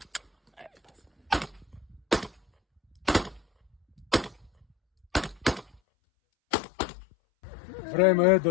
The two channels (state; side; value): drops out; right; at 5.8 s